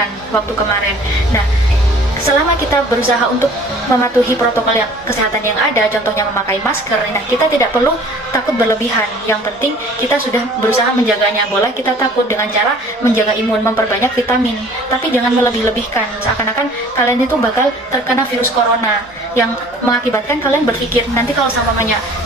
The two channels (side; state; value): both; normal; correlation 0.50